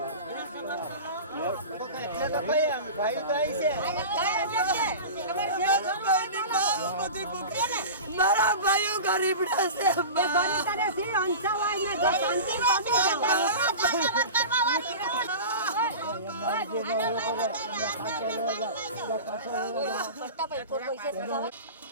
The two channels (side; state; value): both; inverted; correlation -0.31